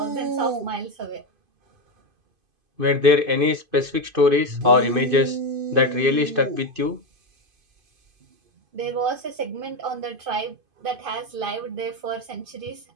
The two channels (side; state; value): left; late; 2.5 ms